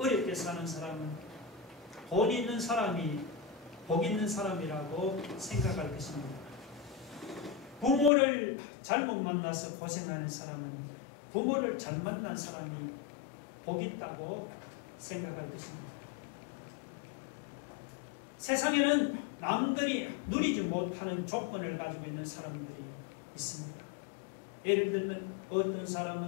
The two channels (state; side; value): drops out; right; at 8.1 s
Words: 사는 사람은 돈 있는 사람이 복 있는 사람이라고 생각할 것입니다. 부모를 잘못 만나서 고생하는 사람은 부모를 잘 만난 사람이 복 있다고 생각할 것입니다. 세상에는 남들이 누리지 못하는 조건을 가지고 있는 사람들이 있습니다. 예를 들면 어떤